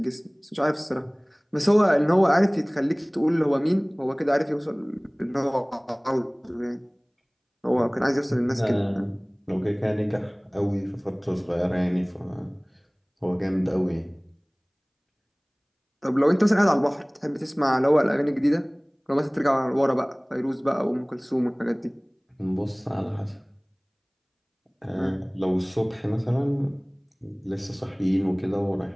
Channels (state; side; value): identical; both; correlation 1.00